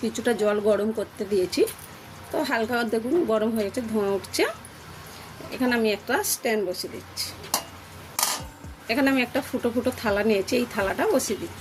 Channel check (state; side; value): identical; both; correlation 1.00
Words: কিছুটা জল গরম করতে দিয়েছি। তো হালকা দেখুন গরম হয়ে গেছে, ধোঁয়া উঠছে। এখানে আমি একটা স্ট্যান্ড বসিয়ে দিচ্ছি। এখানে আমি একটা ফুটো ফুটো থালা নিয়েছি, এই থালাটা বসিয়ে